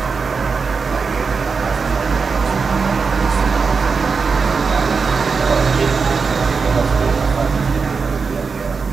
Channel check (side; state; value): left; quieter; 5.0 dB